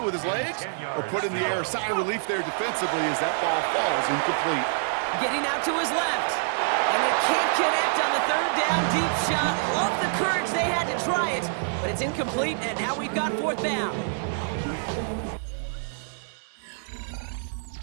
with his legs or put it in the air. Sigh of relief there defensively as that ball falls incomplete. Getting out to his left. And they can't connect on the 3rd down deep shot. Love the courage they had to try it, but it's incomplete, and now we've got 4th down.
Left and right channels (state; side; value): silent; left; digital silence